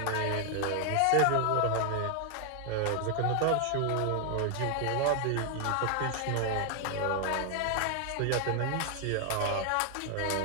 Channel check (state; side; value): different; both; correlation 0.00